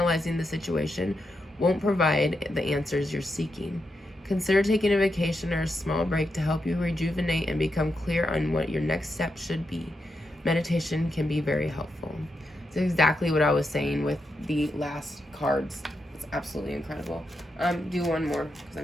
the situation won't provide the answers you're seeking. Consider taking a vacation or a small break to help you rejuvenate and become clear on what your next step should be. Meditation can be very helpful. It's exactly what I was saying with the last cards. It's absolutely incredible. Do one more because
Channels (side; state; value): both; normal; correlation 0.85